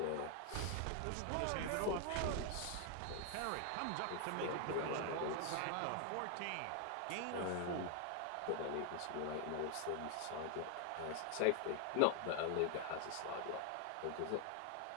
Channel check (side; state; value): both; different; correlation 0.00